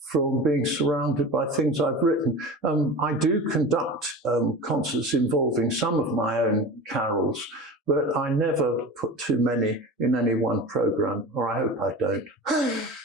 from being surrounded by things I've written. I do conduct concerts involving some of my own carols, but I never put too many in any one programme, or I hope I don't.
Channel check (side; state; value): both; normal; correlation 0.32